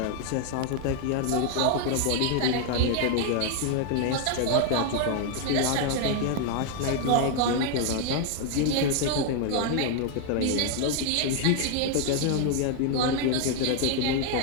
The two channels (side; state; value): both; different; correlation 0.00